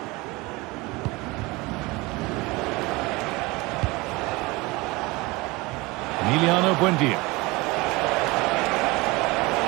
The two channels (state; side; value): quieter; left; 22.9 dB